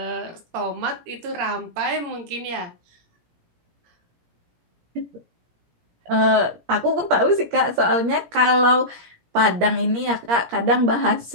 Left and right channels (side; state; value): left; late; 17 ms